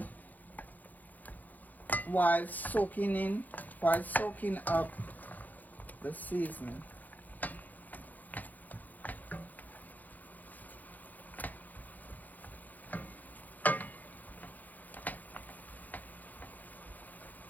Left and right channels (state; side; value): late; right; 0.082 ms